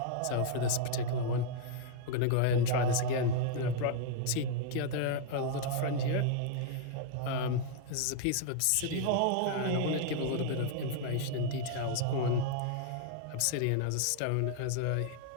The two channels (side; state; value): both; different; correlation -0.01